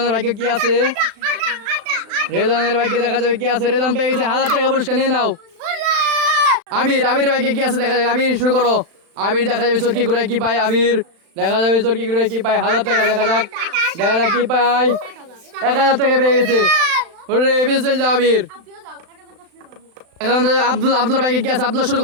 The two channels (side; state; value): left; late; 36 ms